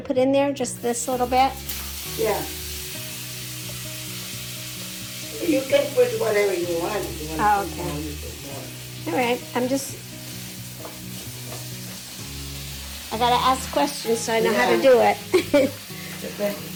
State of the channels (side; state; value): both; identical; correlation 1.00